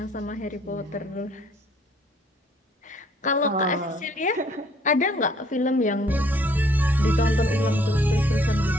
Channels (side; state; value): both; normal; correlation 0.62